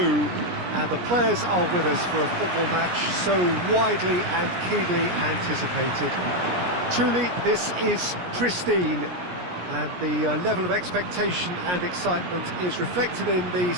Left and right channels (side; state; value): left; late; 17 ms